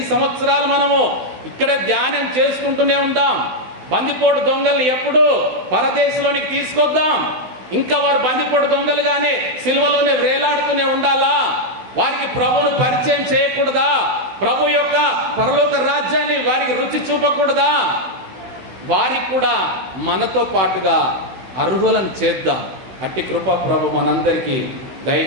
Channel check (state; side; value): late; left; 16 ms